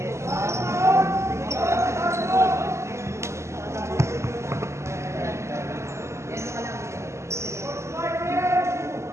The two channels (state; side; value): late; left; 0.13 ms